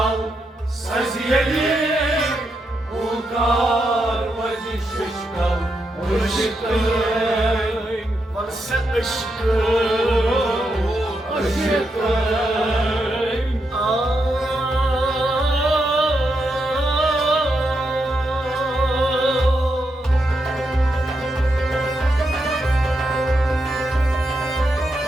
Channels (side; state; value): both; normal; correlation 0.83